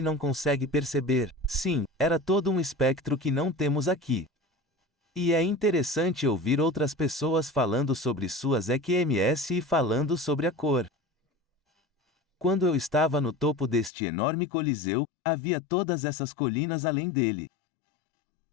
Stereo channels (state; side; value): drops out; right; at 13.9 s